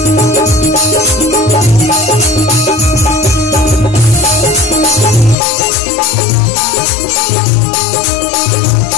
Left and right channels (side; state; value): right; drops out; at 5.4 s